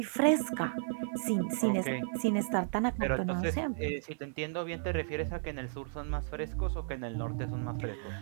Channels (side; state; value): left; silent; 55 dB below the other